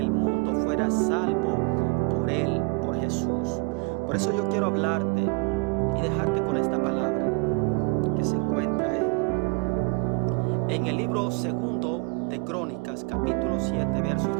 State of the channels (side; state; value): left; quieter; 31.0 dB